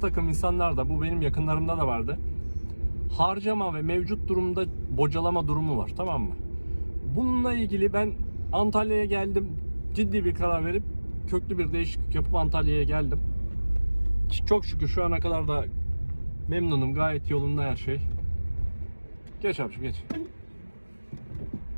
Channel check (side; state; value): both; inverted; correlation -1.00